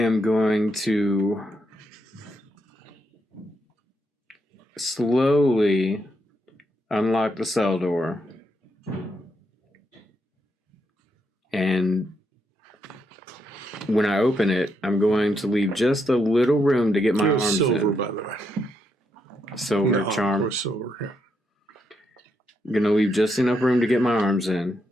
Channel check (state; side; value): normal; both; correlation 0.80